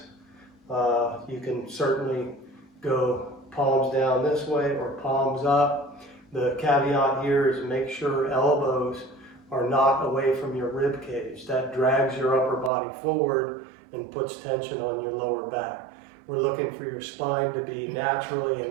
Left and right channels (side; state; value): left; drops out; at 12.7 s